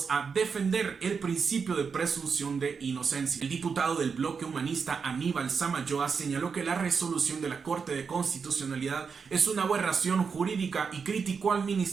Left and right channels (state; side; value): quieter; left; 5.7 dB